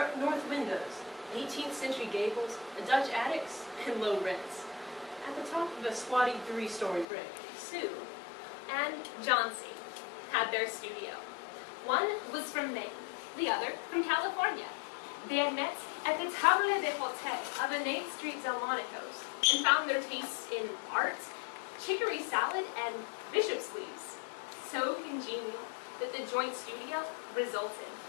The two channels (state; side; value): drops out; right; at 7.1 s